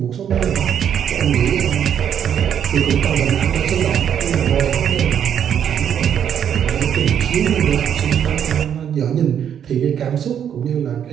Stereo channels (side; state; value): left; quieter; 8.9 dB